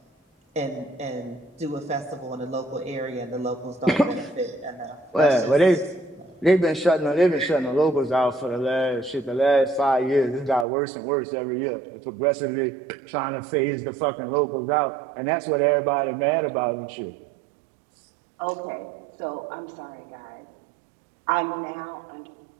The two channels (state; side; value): drops out; left; at 10.7 s